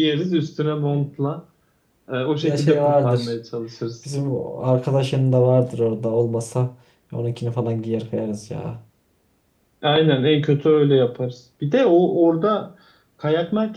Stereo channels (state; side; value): identical; both; correlation 1.00